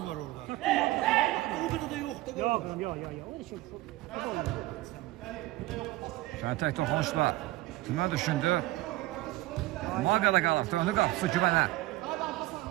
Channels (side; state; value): left; quieter; 18.2 dB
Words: var orada. O qədər də yoxdur. Yox. Şöyle tek toxunuşla tümə düşündü. Maqada qalır. Döndü qapısı Güvənə.